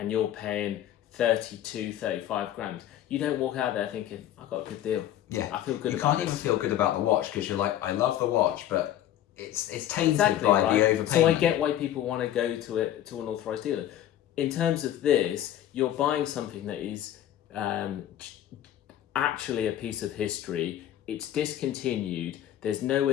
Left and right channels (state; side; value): quieter; right; 12.0 dB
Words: you're paying 32, 35 grand, you don't walk out there thinking, I got a good deal. Yeah, I feel good. You can't even feel good about the watch because you're like, I love the watch, but it's tainted by the overpayment. So I get why people want to go to an authorized dealer. In terms of this, you're buying something that is actually a piece of history. It's discontinued. There's